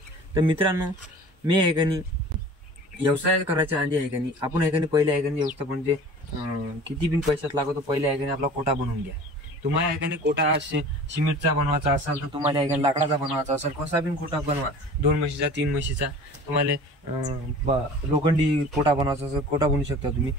तर मित्रांनो, मी आहे का नाही व्यवसाय करायच्या आधी आहे का नाही आपण आहे का नाही पहिले आहे का नाही व्यवस्थापन म्हणजे किती बिन पैशात लागतो, पहिले आहे का नाही आपला कोटा बनवून घ्या। तुम्हाला आहे का नाही कोटा सिमेंटचा बनवायचा असेल तर तुम्हाला आहे का लाकडाचा बनवायचा असेल, कसा बिन कोटा बनवा, 2 म्हशीचा 3 म्हशीचा, तुम्हाला लोखंडी कोटा बनवायचा असेल कोटा बनवू शकता तुम्ही।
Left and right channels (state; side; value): normal; both; correlation 0.42